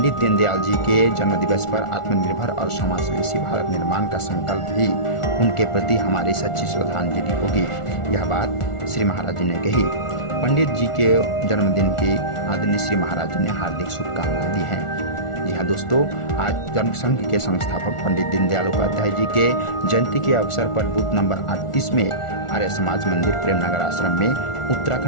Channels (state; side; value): late; right; 1.4 ms